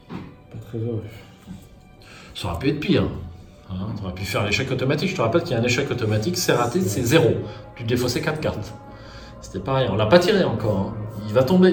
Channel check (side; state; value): both; identical; correlation 1.00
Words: une. Pas très heureux. Ça aurait pu être pire. Hein, tu aurais pu faire l'échec automatique. Je te rappelle qu'il y a un échec automatique, c'est raté, c'est 0. Tu défaussais 4 cartes. C'était pareil, on l'a pas tiré encore. Hein. Il va